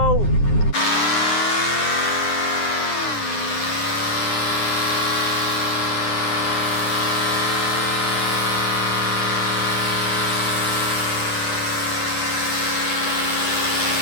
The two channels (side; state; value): right; late; 9.7 ms